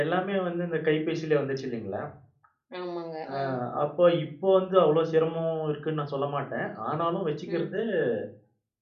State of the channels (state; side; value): identical; both; correlation 1.00